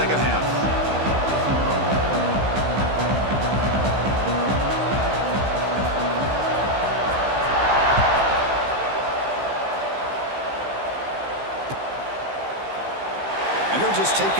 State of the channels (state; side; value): late; left; 15 ms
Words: half. And they'll just take